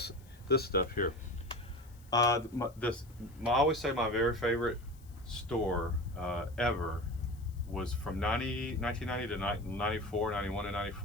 stuff here. I always say my very favorite store ever was from 1990 to 94, 91 and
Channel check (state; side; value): noise; left; hiss, 28 dB below the sound